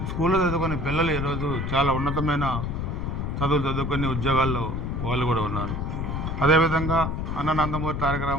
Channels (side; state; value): left; noise; rumble, 2 dB below the sound